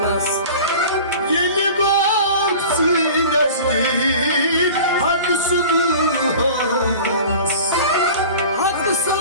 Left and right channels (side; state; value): both; inverted; correlation -0.39